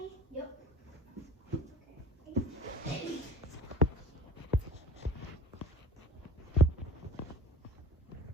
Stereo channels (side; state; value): both; normal; correlation 0.41